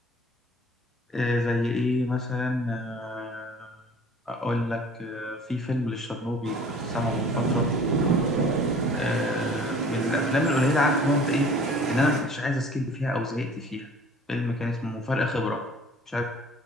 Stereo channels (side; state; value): both; normal; correlation 0.49